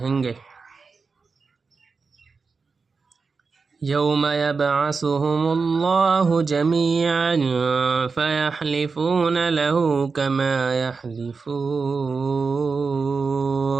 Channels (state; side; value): quieter; left; 4.7 dB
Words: گے۔ یوم یبعثهم اللہ جمیعا فیحلفون له